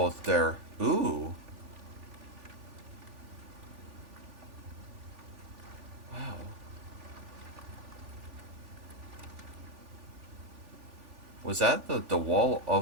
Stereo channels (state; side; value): late; left; 3.4 ms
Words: there. Ooh. Wow. Was that the wall